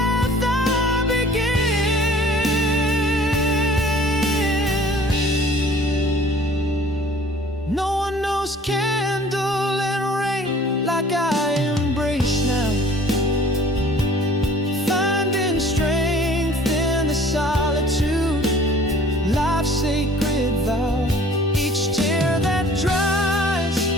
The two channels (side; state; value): both; normal; correlation 0.51